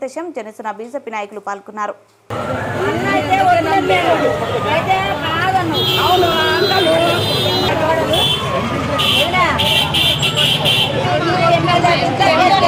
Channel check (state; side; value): identical; both; correlation 1.00